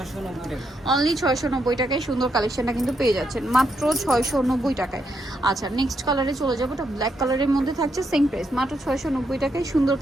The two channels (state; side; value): normal; both; correlation 0.79